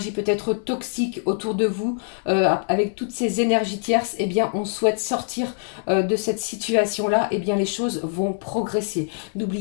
peut-être toxique autour de vous, avec toutes ces énergies tierces, eh bien on souhaite sortir de cette situation-là, eh bien les choses vont progresser.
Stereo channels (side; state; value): right; silent; 63 dB below the other